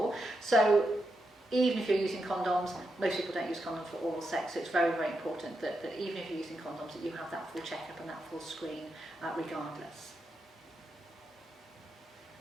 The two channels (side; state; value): both; normal; correlation 0.85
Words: So even if you're using condoms, most people don't use condoms for oral sex, so it's very, very important that even if you're using condoms, that you have that full checkup and that full screen regardless.